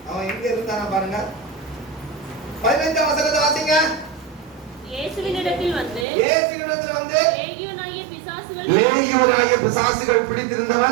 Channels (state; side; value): drops out; left; at 6.1 s